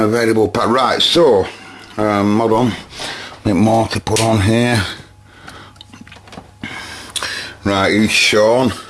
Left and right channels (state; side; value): identical; both; correlation 1.00